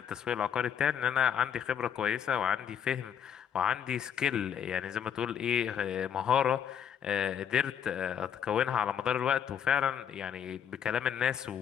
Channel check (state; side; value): quieter; right; 8.6 dB